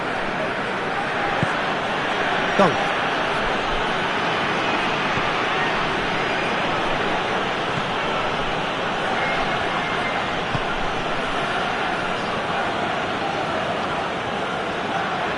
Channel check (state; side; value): identical; both; correlation 1.00